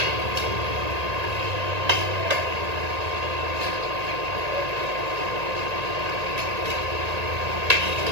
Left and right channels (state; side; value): late; left; 1.8 ms